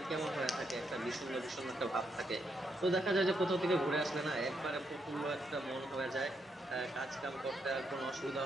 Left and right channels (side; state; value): both; normal; correlation 0.79